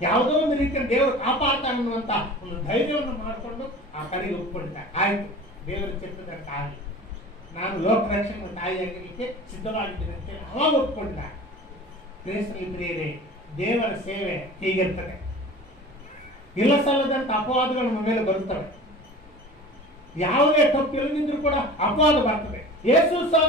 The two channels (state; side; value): normal; both; correlation 0.39